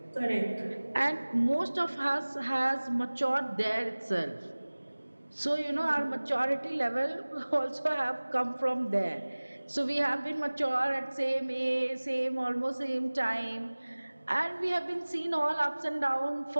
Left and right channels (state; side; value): inverted; both; correlation -1.00